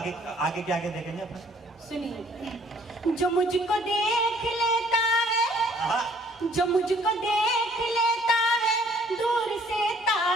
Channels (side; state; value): both; normal; correlation 0.60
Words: के आगे देखेंगे अपन। सुनिए, जो मुझको देख लेता है, जो मुझको देख लेता है दूर से